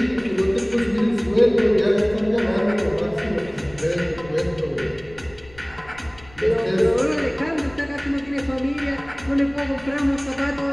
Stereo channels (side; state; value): left; noise; rumble, 23 dB below the sound